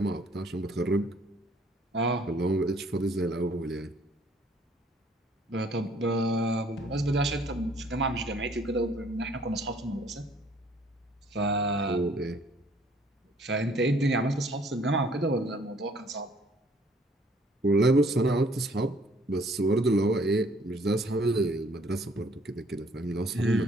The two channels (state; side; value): normal; both; correlation 0.60